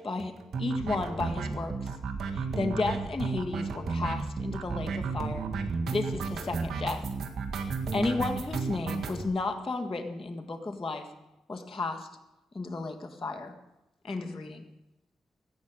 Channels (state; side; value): normal; both; correlation 0.82